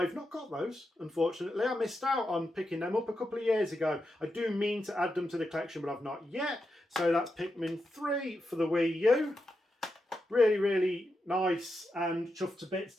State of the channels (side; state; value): both; normal; correlation 0.86